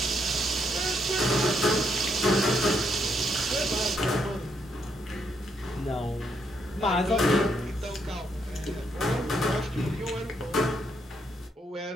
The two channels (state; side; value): normal; both; correlation 0.76